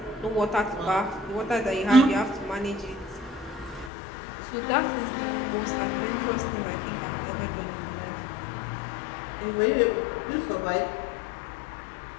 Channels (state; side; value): drops out; right; at 3.9 s